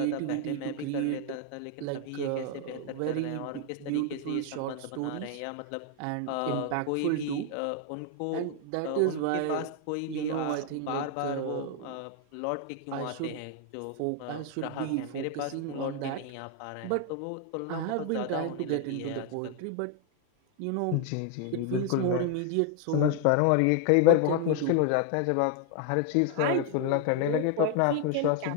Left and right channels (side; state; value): both; different; correlation 0.01